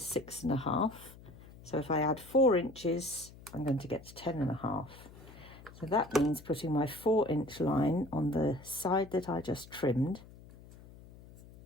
6.5. So if I add 4 inches, I'm going to get to 10.5. So that means putting my 4-inch line on the side that I just trimmed,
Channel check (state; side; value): noise; left; hum, 20 dB below the sound